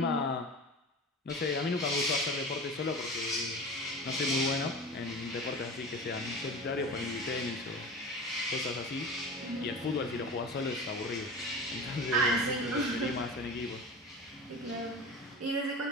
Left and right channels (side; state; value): both; normal; correlation 0.32